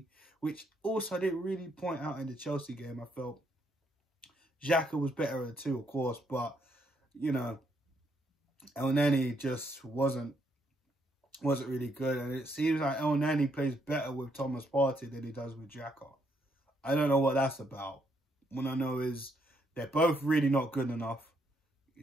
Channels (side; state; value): both; normal; correlation 0.74